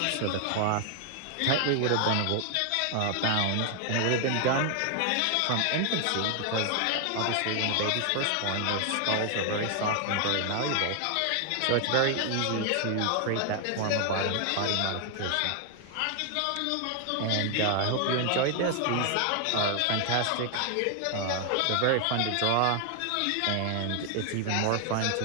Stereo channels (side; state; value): both; different; correlation 0.00